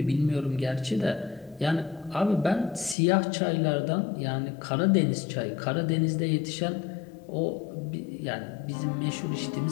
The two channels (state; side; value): drops out; right; at 3.0 s